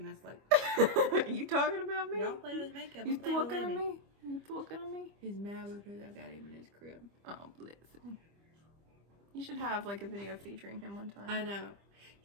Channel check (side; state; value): left; late; 25 ms